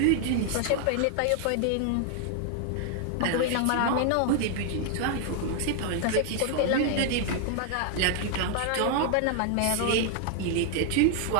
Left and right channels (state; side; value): different; both; correlation 0.00